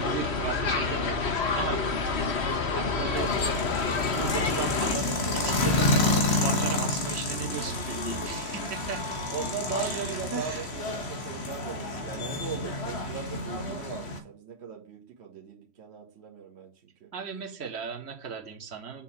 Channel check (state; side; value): late; right; 3.1 ms